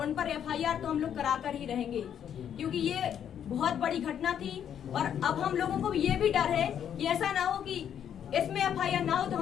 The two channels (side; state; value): right; quieter; 9.1 dB